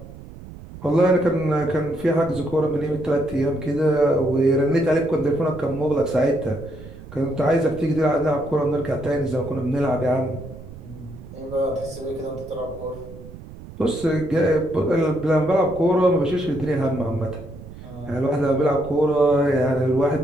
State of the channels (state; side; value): noise; right; rumble, 16 dB below the sound